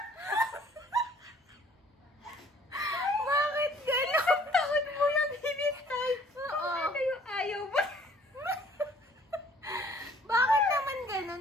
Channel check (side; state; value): both; normal; correlation 0.57